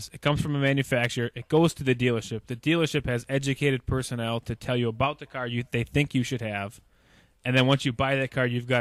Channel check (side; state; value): both; identical; correlation 1.00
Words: it comes from a manufacturer, it goes to the dealership. The dealership has educated personnel to tell you about the car they think you should have. And then once you buy that car, you've